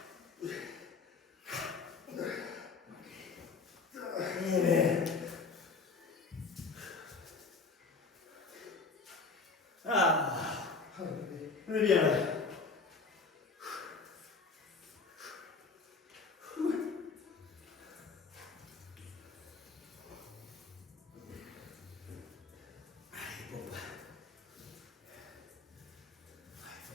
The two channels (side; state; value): right; quieter; 4.4 dB